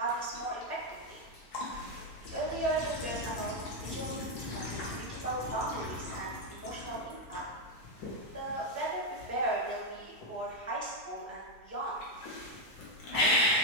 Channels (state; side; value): late; right; 5.7 ms